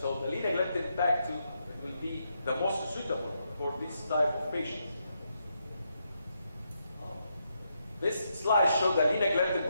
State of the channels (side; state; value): both; inverted; correlation -0.81